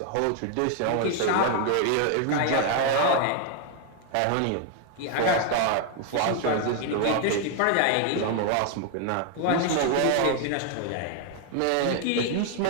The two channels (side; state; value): both; different; correlation 0.00